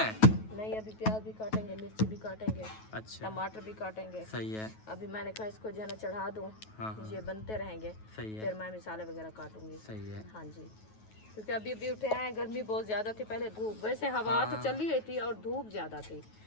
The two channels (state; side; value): late; right; 9.3 ms